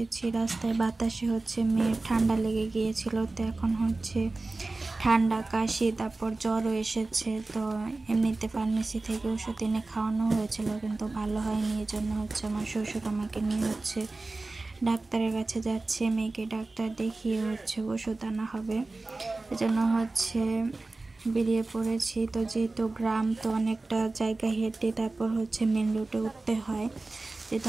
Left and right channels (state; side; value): quieter; left; 3.3 dB